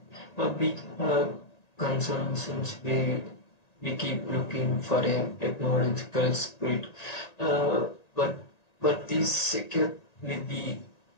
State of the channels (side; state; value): right; late; 1.9 ms